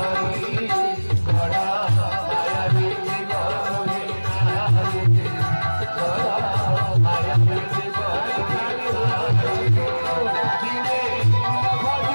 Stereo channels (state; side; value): inverted; both; correlation -1.00